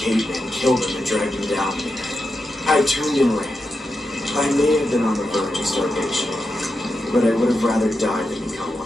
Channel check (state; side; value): normal; both; correlation 0.88